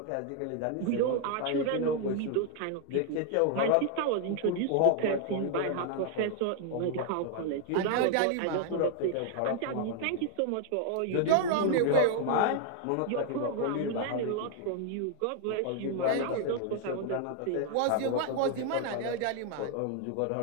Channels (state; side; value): different; both; correlation 0.00